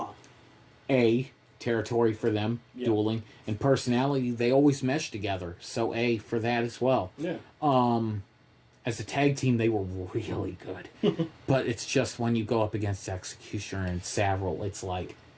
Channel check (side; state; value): both; identical; correlation 1.00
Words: A, territory for them, dueling. And personality, they always mesh together, so A for that as well. Yeah. As a tag team, they were really good. But it's just when you go up against Executioner and Savril, it's like,